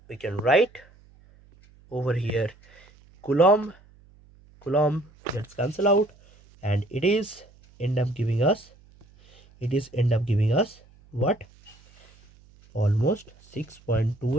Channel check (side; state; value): right; noise; hum, 28 dB below the sound